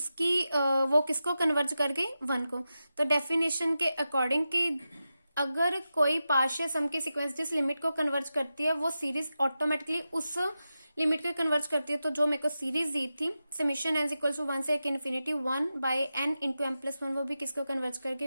वो किसको कन्वर्ज कर गई, 1 को। तो डेफिनेशन के अकॉर्डिंग कि अगर कोई पार्शियल सम की सीक्वेंस जिस लिमिट को कन्वर्ज करती है वो सीरीज ऑटोमेटिकली उस लिमिट को कन्वर्ज करती है। तो जो मेरे को सीरीज दी थी समीशन n इक्वल टू 1 से एक infinity 1 by n into m plus 1, वो भी किसको कन्वर्ज कर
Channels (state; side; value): inverted; both; correlation -0.91